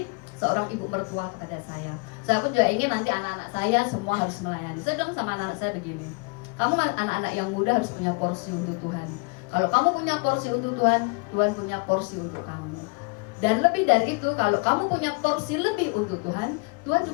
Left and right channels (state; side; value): quieter; right; 32.4 dB